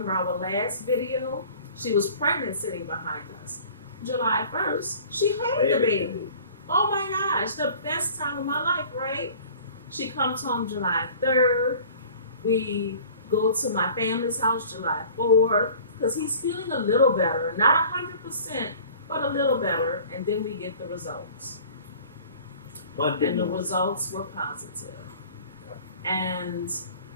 our last video, she was pregnant sitting behind us. July 1st, she had the baby. Oh my gosh, the best time of my life, right? She comes home July 3rd. We go to my family's house July 4th because he's feeling a little better. Not 100%, but a little better. And then we get the results. Monday And the morning. results were positive. And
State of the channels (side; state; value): both; inverted; correlation -0.46